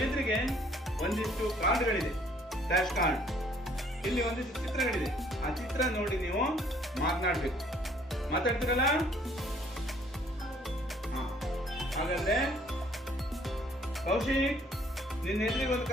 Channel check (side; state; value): both; normal; correlation 0.61